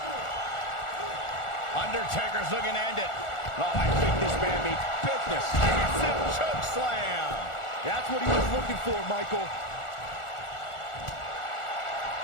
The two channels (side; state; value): right; late; 1.4 ms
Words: Undertaker's looking to end it. Oh, I think this man means business. Massive choke slam. That's what he was looking for, Michael.